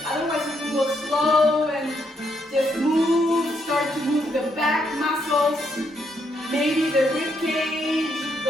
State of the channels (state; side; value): normal; both; correlation 0.76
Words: Otherwise, you can go slow and just move. Start to move the back muscles. Maybe the rib cage